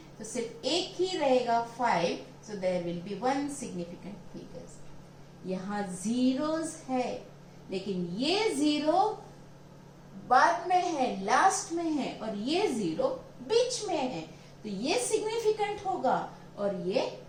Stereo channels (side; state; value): both; identical; correlation 1.00